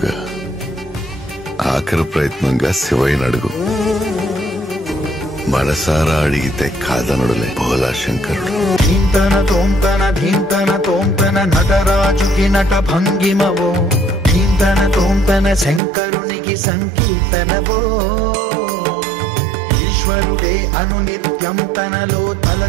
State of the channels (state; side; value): drops out; left; at 15.8 s